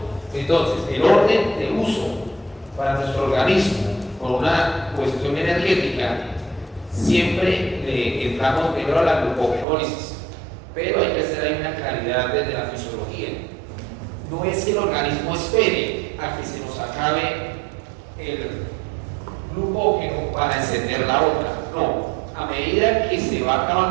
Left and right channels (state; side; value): drops out; left; at 9.7 s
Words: Entonces, el orden de uso para nuestro organismo por una cuestión energética, siempre le entramos primero a la glucogenólisis, pero hay que hacer ahí una claridad desde la fisiología. No es que el organismo espere a que se nos acabe el glucógeno para encender la otra, no. A medida que se va